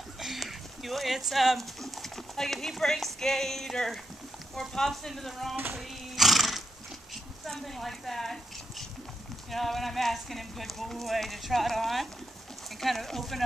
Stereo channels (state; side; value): normal; both; correlation 0.82